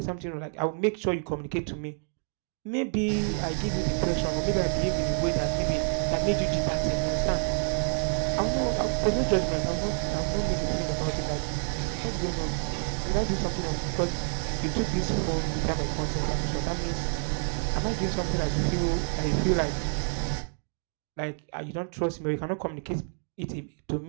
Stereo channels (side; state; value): left; silent; 58 dB below the other